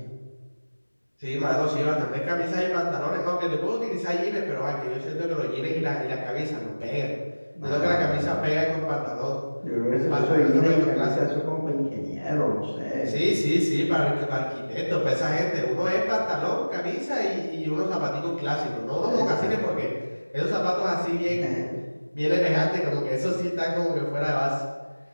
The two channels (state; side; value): inverted; both; correlation -1.00